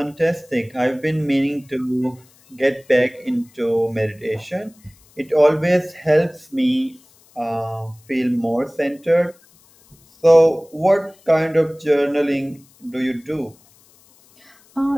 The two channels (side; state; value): left; noise; hiss, 30 dB below the sound